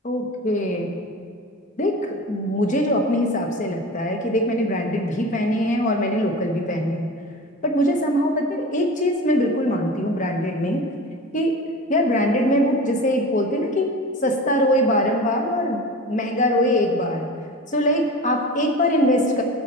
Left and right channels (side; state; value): both; normal; correlation 0.33